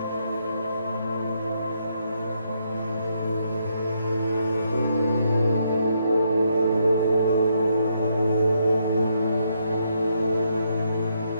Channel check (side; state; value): both; inverted; correlation -0.76